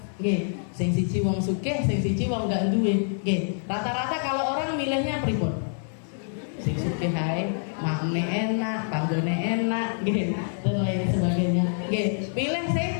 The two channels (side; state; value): right; silent; digital silence